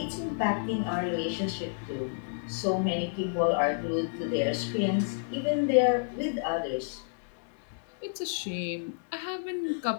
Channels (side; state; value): right; silent; digital silence